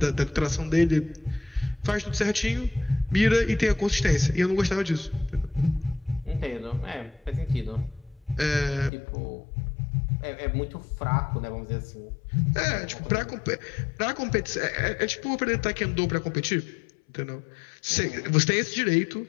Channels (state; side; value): drops out; right; at 8.9 s